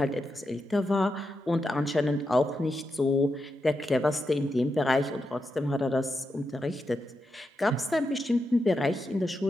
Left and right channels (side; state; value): both; normal; correlation 0.86